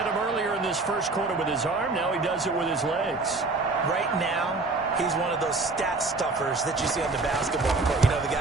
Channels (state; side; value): quieter; left; 3.5 dB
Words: him earlier in this first quarter with his arm. Now he does it with his legs. Right now, he's one of those stat stuffers that you see on the basketball court. You know, the